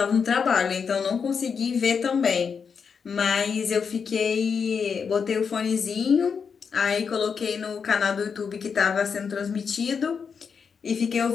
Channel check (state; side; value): quieter; right; 6.2 dB